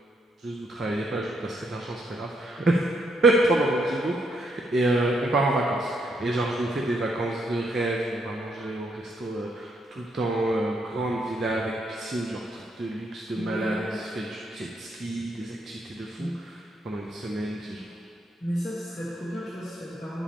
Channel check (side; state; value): both; normal; correlation 0.75